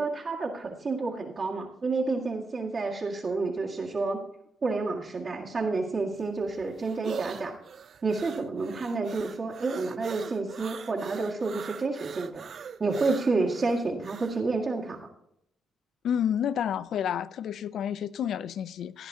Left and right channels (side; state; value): both; normal; correlation 0.81